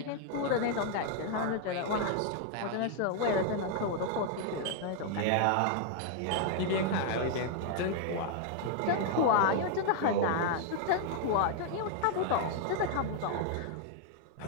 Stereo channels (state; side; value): different; both; correlation 0.00